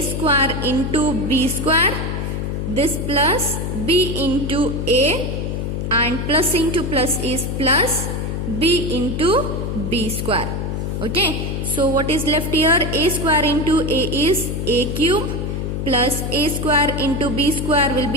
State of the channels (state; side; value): noise; left; hum, 2 dB below the sound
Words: square into b square, this plus b into a, and plus into plus is plus b into b square. Okay, so what is left here? A square into a is a cube, plus a square into b square will